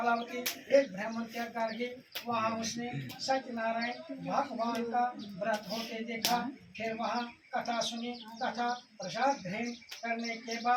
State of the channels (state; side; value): identical; both; correlation 1.00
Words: एक ब्राह्मण के घर गई। वहाँ उसने सत्यनारायण भगवान का व्रत होते देखा। फिर वहाँ कथा सुनी तथा प्रसाद ग्रहण करने के